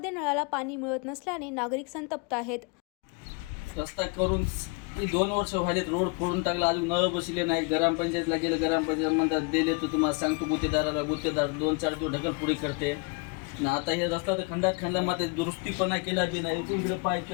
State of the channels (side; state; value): right; quieter; 31.7 dB